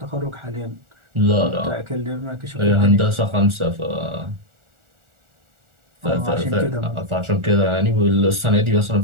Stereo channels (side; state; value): left; late; 1.4 ms